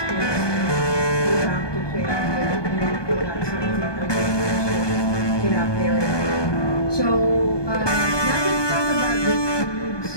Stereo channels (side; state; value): right; late; 1.2 ms